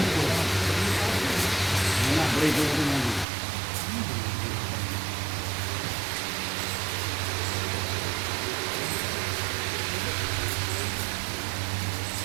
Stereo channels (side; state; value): left; drops out; at 3.2 s